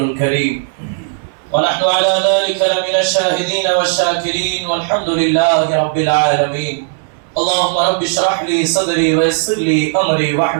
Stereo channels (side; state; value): left; silent; digital silence